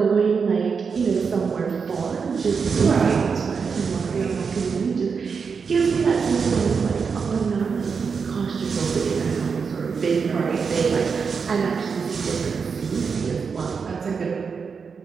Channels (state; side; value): quieter; left; 5.7 dB